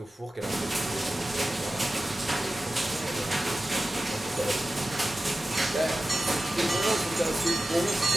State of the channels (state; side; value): normal; both; correlation 0.94